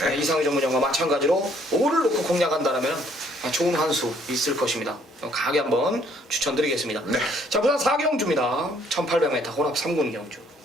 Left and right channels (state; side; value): normal; both; correlation 0.64